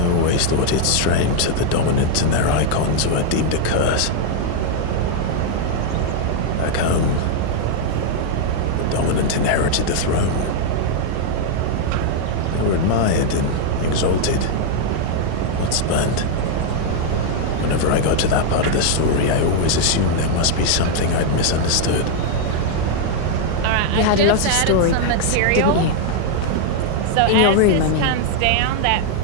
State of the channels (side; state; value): both; different; correlation 0.00